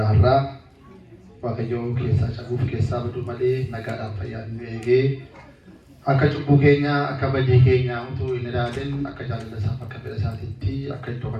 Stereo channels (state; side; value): identical; both; correlation 1.00